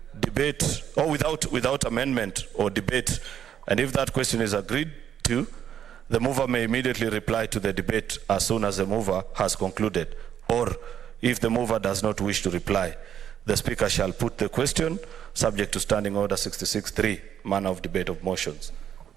debate, or without amendment or debate. And if that question is agreed to, the mover may immediately reply to the debate as soon as the mover has concluded. Or if the mover does not wish to reply, the Speaker shall put the question subject to Standing Order 66(3), manner of debate of motions.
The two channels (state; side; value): quieter; left; 9.5 dB